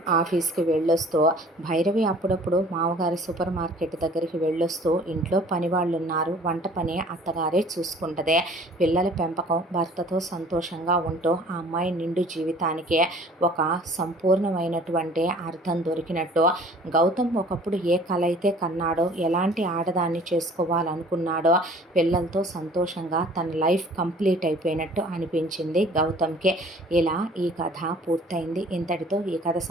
ఆఫీస్కి వెళ్ళొస్తూ భైరవి అప్పుడప్పుడు మామగారి సూపర్ మార్కెట్ దగ్గరికి వెళ్ళొస్తూ ఇంట్లో పని వాళ్ళు ఉన్నారు, వంట పని అత్తగారే చూసుకుంటుంది. పిల్లల పెంపకం, భర్తతో సంతోషంగా ఉంటూ ఆ అమ్మాయి నిండు జీవితానికి ఒక సంపూర్ణమైనటువంటి అర్థం దొరికినట్టు గౌతమ్ ఒకప్పుడు ఏ కల అయితే కన్నాడో, ఎలాంటి ఆడదాన్ని చేసుకోవాలనుకున్నాడో, పిల్లలతో సంతోషంగా తన లైఫ్ కంప్లీట్ అయిపోయినట్టు అనిపించింది గౌతమ్కి. ఇలా ఈ కథ పూర్తయింది. ఇంతటితో ఈ కథ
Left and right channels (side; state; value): both; normal; correlation 0.50